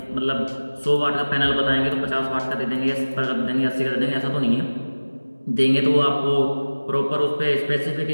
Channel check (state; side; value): inverted; both; correlation -1.00